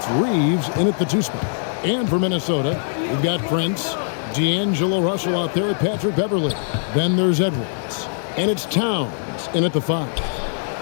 Reeves in at the 2 spot. And for Minnesota, we've got Prince, D'Angelo Russell out there with Patrick Beverley. Then there's Edwards. And it's Towns in at the 5.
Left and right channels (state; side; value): silent; right; 65 dB below the other